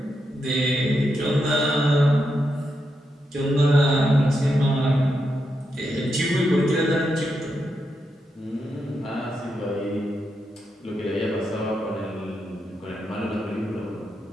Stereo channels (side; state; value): both; normal; correlation 0.84